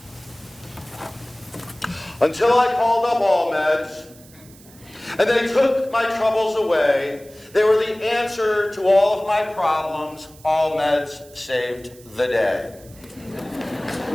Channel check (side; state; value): right; noise; hiss, 24 dB below the sound